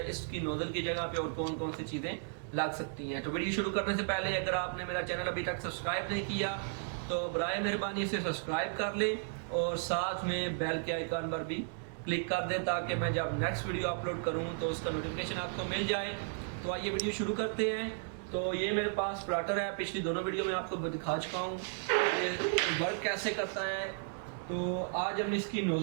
इसकी नोज़ल की जगह पे और कौन कौन सी चीज़ें लग सकती हैं। तो वीडियो शुरू करने से पहले अगर आपने मेरा चैनल अभी तक सब्सक्राइब नहीं किया तो बराए मेहरबानी इसे सब्सक्राइब कर लें और साथ में बेल के आइकन पर भी क्लिक कर दें ताकि मैं जब नेक्स्ट वीडियो अपलोड करूं तो उसका नोटिफिकेशन आपको मिल जाए। तो आइए वीडियो शुरू करते हैं। तो ये मेरे पास प्लॉटर है, पिछली दोनों वीडियो में आपको दिखा चुका हूँ ये वर्क कैसे करता है। तो आज हम इसकी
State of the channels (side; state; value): left; silent; digital silence